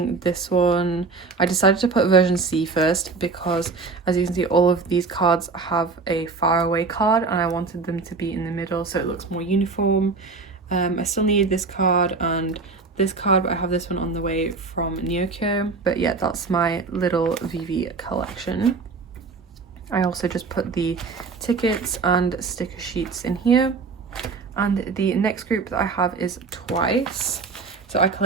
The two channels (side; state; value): left; quieter; 4.3 dB